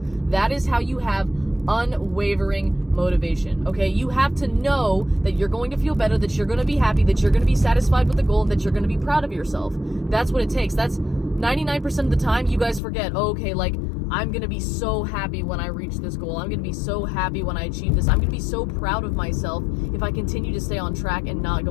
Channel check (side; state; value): right; drops out; at 12.8 s